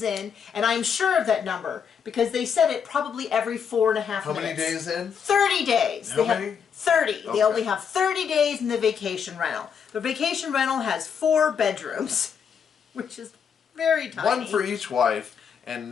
in, and I'm sure of that number because they said it probably every 4.5 minutes. How many days in? 30 days. How many? 30. Okay. They only have 30 days in the vacation rental. The vacation rental has 4 bedrooms, which is very tiny. 1 for each wife, and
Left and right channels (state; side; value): quieter; right; 7.1 dB